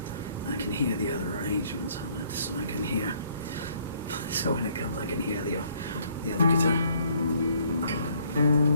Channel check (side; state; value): both; inverted; correlation -0.64